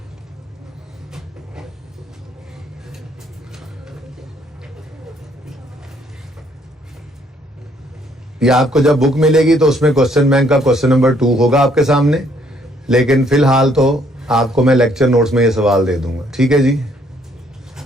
ये आपको जब बुक मिलेगी तो उसमें क्वेश्चन बैंक का क्वेश्चन नंबर 2 होगा आपके सामने, लेकिन फिलहाल तो आपको मैं लेक्चर नोट्स में ये सवाल दे दूंगा, ठीक है जी।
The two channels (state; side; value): normal; both; correlation 0.67